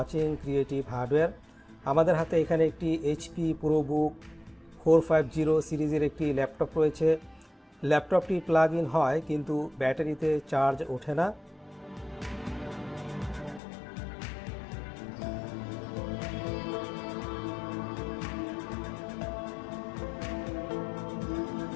Creative Hardware. আমাদের হাতে এখানে একটি HP ProBook 450 সিরিজের একটি ল্যাপটপ রয়েছে। ল্যাপটপটি প্লাগ ইন হয় কিন্তু ব্যাটারিতে চার্জ ওঠে না।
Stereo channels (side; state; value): right; drops out; at 13.6 s